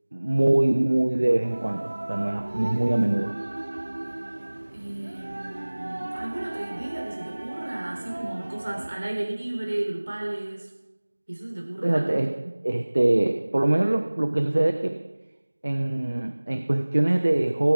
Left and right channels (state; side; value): inverted; both; correlation -1.00